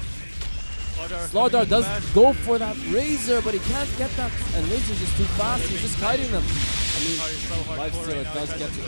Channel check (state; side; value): inverted; both; correlation -1.00